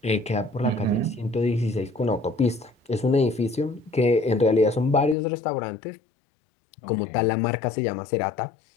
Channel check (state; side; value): drops out; right; at 5.2 s